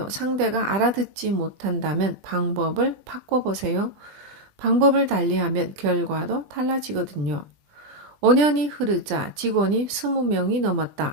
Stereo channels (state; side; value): late; left; 20 ms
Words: 상대가 알아듣지 못한다면 방법을 바꿔보세요. 방법을 달리하면 결과도 달라지거든요. 5년이 흐르자 직원이 20명이